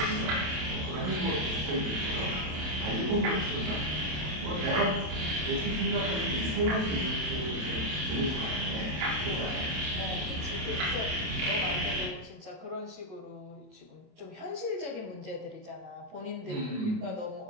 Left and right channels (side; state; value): left; late; 27 ms